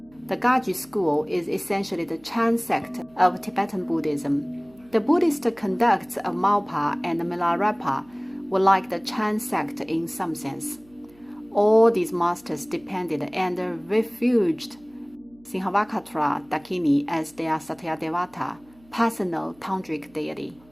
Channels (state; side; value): noise; right; hum, 29 dB below the sound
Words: The Gaju school is essentially the Chan sect of Tibetan Buddhism. The Buddhist conducts of Marpa and Milarepa were like the Chan sect in some sense. All these masters depended and refuged Simhavakara Dakini as their Satyadevata, personal tantric deity.